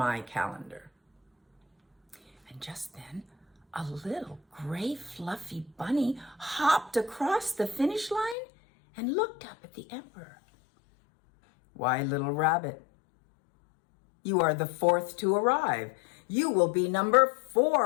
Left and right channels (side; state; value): right; drops out; at 8.3 s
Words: calendar." And just then, a little gray fluffy bunny hopped across the finish line and looked up at the emperor. "Why, little rabbit, you are the 4th to arrive. You will be number